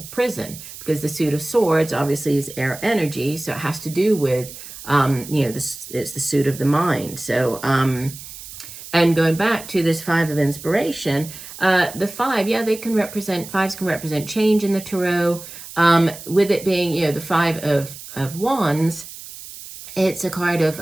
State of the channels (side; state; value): right; noise; hiss, 14 dB below the sound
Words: prison, because the suit of swords obviously is air energy, so it has to do with you know, it's the suit of the mind. So and going back to this Five of Inspiration, the five, yeah, fives can represent change in the tarot. With it being, you know, the Five of Wands, it's a card of